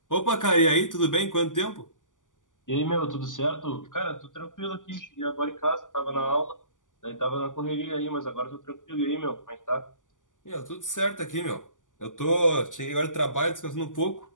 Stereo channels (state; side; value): late; right; 0.87 ms